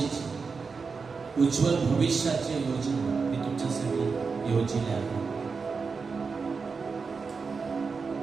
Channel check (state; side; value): quieter; left; 4.9 dB